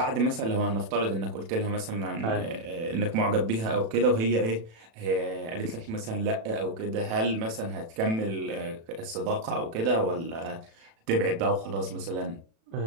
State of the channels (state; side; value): late; left; 36 ms